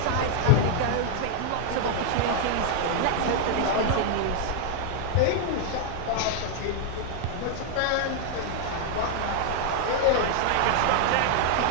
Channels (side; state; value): both; different; correlation 0.00